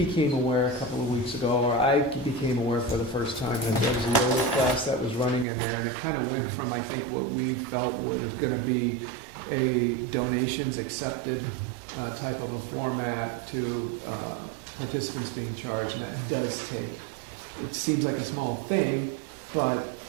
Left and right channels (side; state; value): left; drops out; at 5.5 s